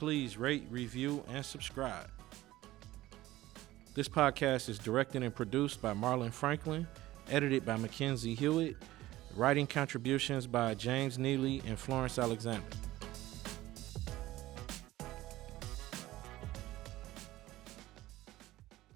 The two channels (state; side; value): quieter; left; 16.5 dB